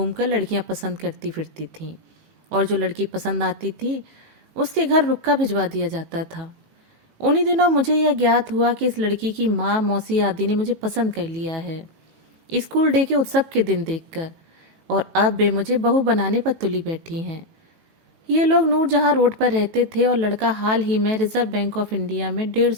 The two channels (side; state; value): left; late; 19 ms